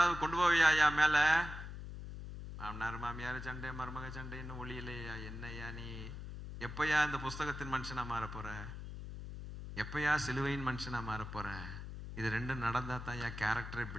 கொண்டு போவியா மேல? மாமனார் மாமியார் சண்டை, மருமக சண்டை, இன்னும் ஒளியிலையா? என்னையா நீ? எப்பயா இந்த புஸ்தகத்தின் மனுஷனா மாற போற? எப்பயா சிலுவையின் மனுஷனா மாற போற? இது ரெண்டும் நடந்தா தான் என் கேரக்டரே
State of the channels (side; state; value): left; noise; hum, 9 dB below the sound